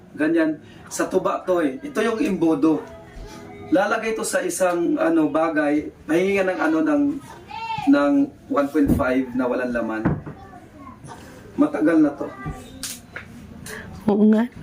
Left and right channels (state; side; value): identical; both; correlation 1.00